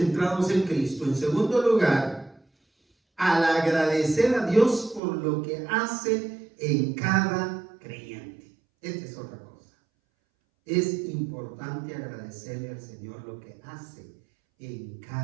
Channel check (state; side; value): drops out; left; at 5.0 s